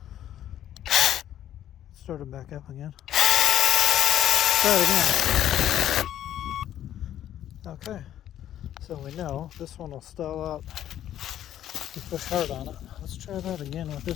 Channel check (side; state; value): right; quieter; 11.5 dB